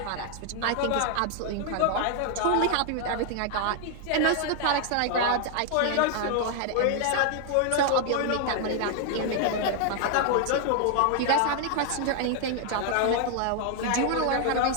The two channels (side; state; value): both; different; correlation 0.00